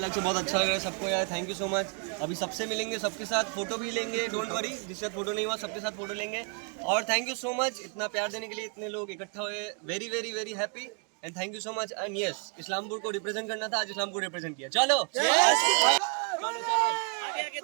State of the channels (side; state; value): left; quieter; 38.5 dB